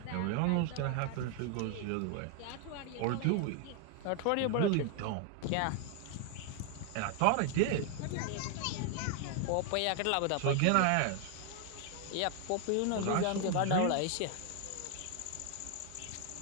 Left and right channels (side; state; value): both; different; correlation 0.00